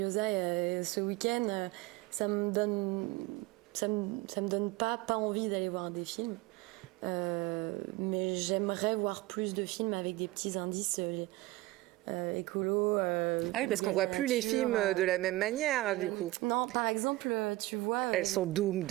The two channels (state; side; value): quieter; left; 19.6 dB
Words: ce week-end, ça me donne pas envie d'aller voir des films. Mais j'aimerais voir plus de films avec des petits indices écolo. Oui, parce qu'on voit plus les films de la même manière, du coup. Non, par exemple, tu vois... Elles sont